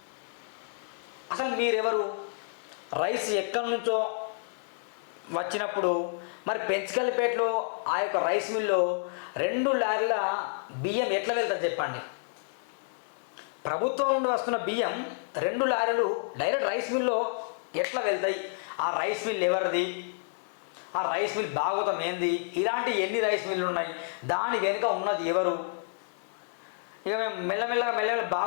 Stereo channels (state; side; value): silent; right; 58 dB below the other